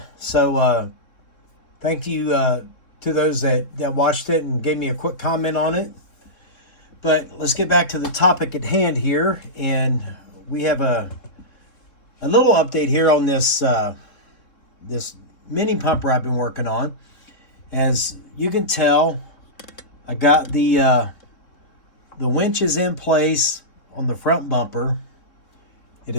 So thank you to those that watched it and gave me a quick comment on it. But let's get back to the topic at hand here, and we have a little update here on this this mini pumper I've been working on. As you can tell, I got the winches in place on the front bumper. It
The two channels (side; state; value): right; late; 3.7 ms